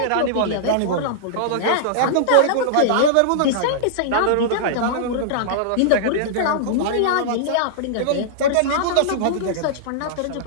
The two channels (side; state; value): both; different; correlation -0.02